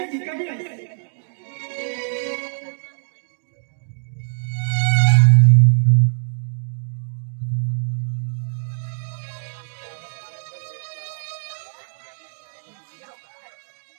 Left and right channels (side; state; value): left; silent; digital silence